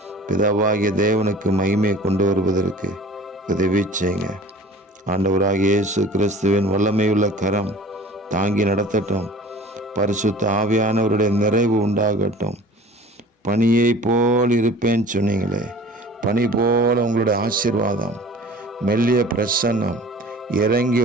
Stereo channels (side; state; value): both; normal; correlation 0.45